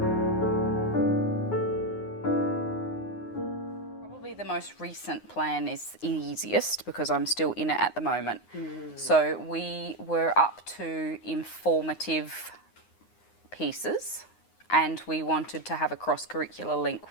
Probably the most recent plan is easiest because I'm still in it at the moment. So we were up to informative pieces and we wanted to have a cross-curricular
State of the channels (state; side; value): late; right; 9.6 ms